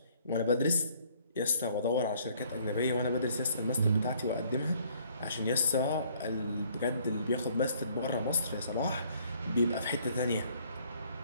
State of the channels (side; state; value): both; inverted; correlation -0.62